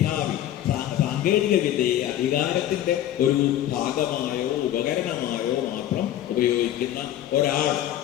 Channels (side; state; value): right; quieter; 12.2 dB